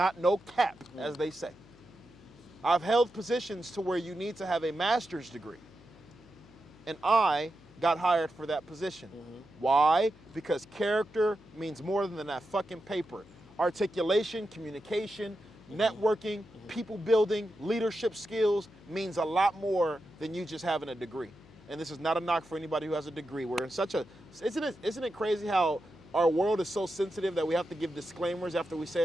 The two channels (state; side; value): noise; left; hum, 24 dB below the sound